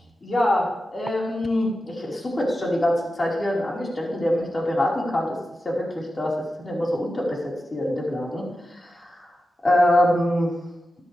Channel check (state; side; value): normal; both; correlation 0.92